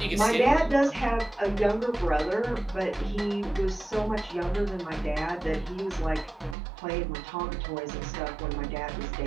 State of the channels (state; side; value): drops out; left; at 6.6 s